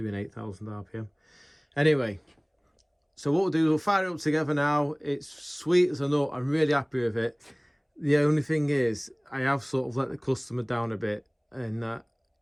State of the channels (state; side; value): identical; both; correlation 1.00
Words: 8,000 RPM. Anyway, so what we'll do, we'll fire it up together now. It's sweet as a nut. I'm really happy with it. The only thing is, I have sort of let the customer down a bit, and that